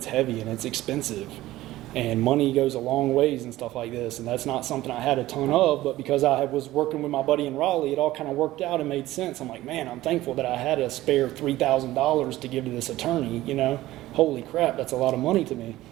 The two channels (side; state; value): left; quieter; 16.2 dB